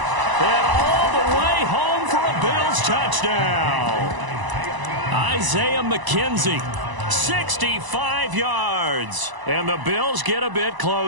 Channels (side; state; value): left; late; 1.0 ms